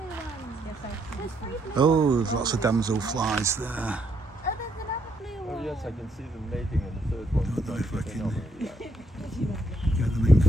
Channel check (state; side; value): normal; both; correlation 0.75